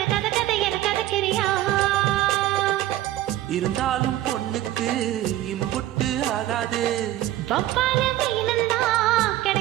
கத கதை என கதக்கிறியா இருந்தாலும் பொண்ணுக்கு இம்புட்டு ஆகாது வப்பால மீனந்தா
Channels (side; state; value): left; quieter; 14.3 dB